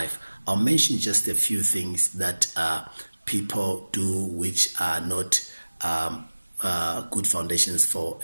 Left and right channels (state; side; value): inverted; both; correlation -1.00